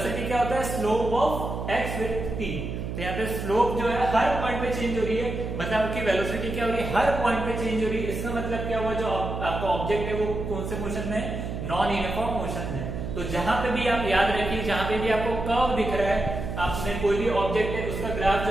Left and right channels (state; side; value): noise; right; hum, 5 dB below the sound